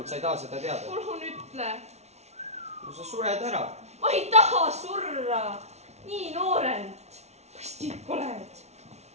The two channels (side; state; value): left; late; 0.32 ms